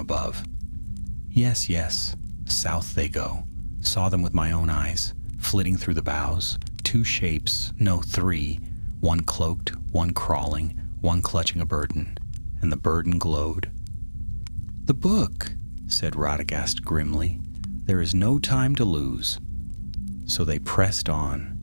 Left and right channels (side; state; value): both; inverted; correlation -1.00